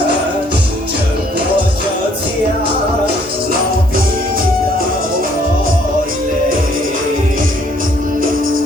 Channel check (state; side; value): normal; both; correlation 0.64